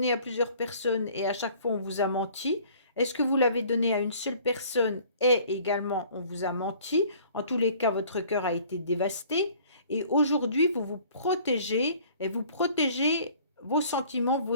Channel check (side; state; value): both; inverted; correlation -0.52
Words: à plusieurs personnes et à chaque fois on vous a menti? Est-ce que vous l'avez donné à une seule personne et également on vous a menti? En tous les cas, votre cœur a été dévasté. Et aujourd'hui, vous vous protégez et vous protégez vos sentiments, vos